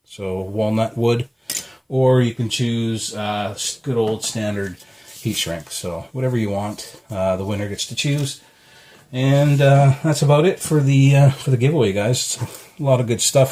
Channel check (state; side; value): identical; both; correlation 1.00